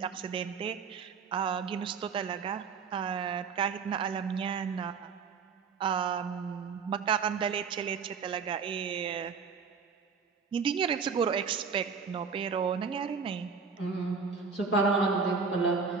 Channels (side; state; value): left; quieter; 5.6 dB